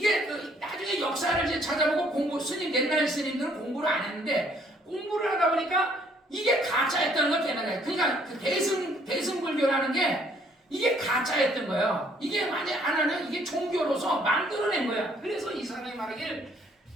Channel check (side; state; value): both; normal; correlation 0.64